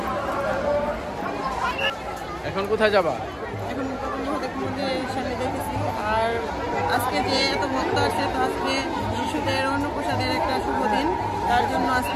এখন কোথায় যাবা? এখন সামনে দেখেছি। আর আজকে যে এত ভক্ত আসছে, তো আজকে শিশুদের অন্নপ্রসাদের একটা শুভ দিন, তার জন্য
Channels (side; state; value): both; identical; correlation 1.00